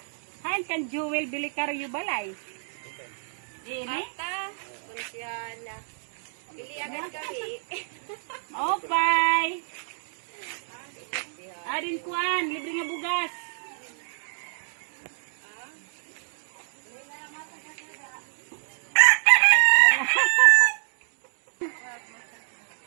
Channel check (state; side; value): silent; left; digital silence